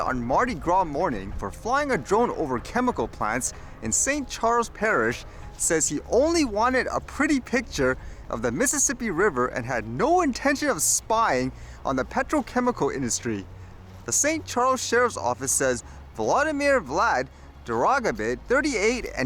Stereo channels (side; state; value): both; identical; correlation 1.00